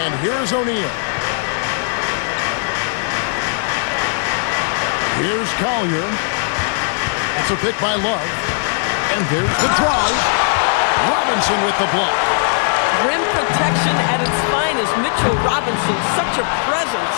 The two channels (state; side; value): silent; right; digital silence